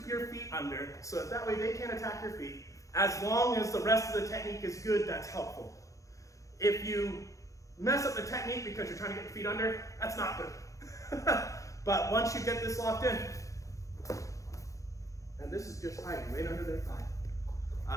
your feet under, so that way they can't attack your feet. As long as the rest of the technique is good, that's helpful. If you mess up the technique because you're trying to get your feet under, that's not good. But once you get this locked in, and this is just hiding right under their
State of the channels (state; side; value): late; right; 0.16 ms